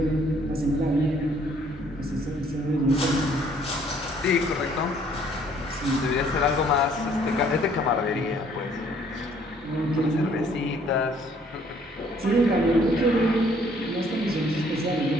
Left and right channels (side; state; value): both; normal; correlation 0.61